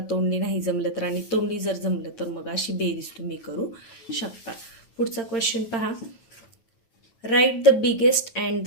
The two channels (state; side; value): late; right; 9.2 ms